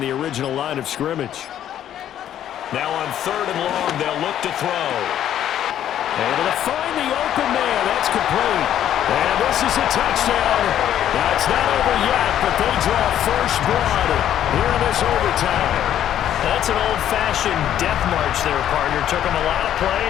the original line of scrimmage. Now on 3rd and long, they'll look to throw. Able to find the open man. That's complete. And this is a touchdown. That's not over yet, but they draw first blood here in this overtime. That's an old-fashioned death march there, partner. Took them a lot of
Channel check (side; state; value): right; quieter; 10.9 dB